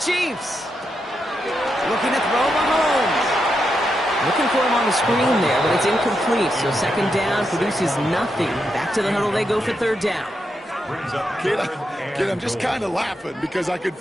Looking to throw Mahomes. Looking for him on the screen there, but it's incomplete. So 2nd down produces nothing. Back to the huddle they go for 3rd down. Kid, I'm just kind of laughing because I could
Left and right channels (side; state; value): both; normal; correlation 0.84